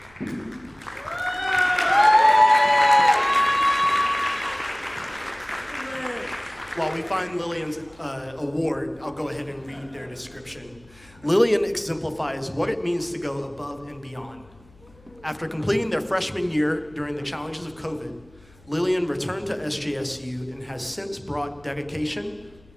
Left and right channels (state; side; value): noise; left; hum, 27 dB below the sound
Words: While we find Lillian's award, I'll go ahead and read their description. Lillian exemplifies what it means to go above and beyond. After completing their freshman year during the challenges of COVID, Lillian returned to SJSU and has since brought dedication,